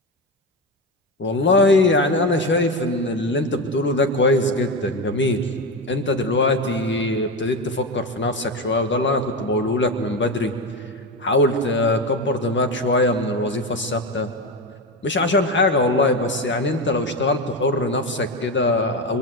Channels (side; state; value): both; normal; correlation 0.17